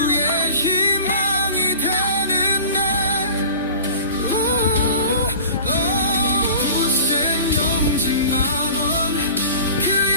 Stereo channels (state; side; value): inverted; both; correlation -0.39